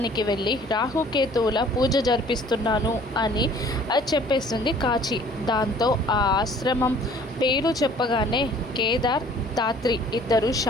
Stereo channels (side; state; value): both; normal; correlation 0.53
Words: వెళ్ళి రాహుకేతువుల పూజ జరిపిస్తున్నాను అని చెప్పేస్తుంది కాచి. దాంతో ఆ ఆశ్రమం పేరు చెప్పగానే కేదార్, ధాత్రి ఇద్దరు